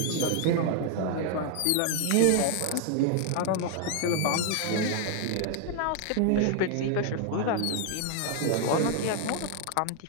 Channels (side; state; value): both; different; correlation 0.00